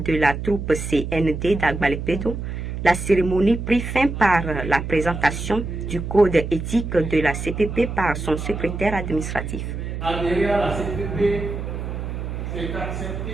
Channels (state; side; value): noise; right; hum, 5 dB below the sound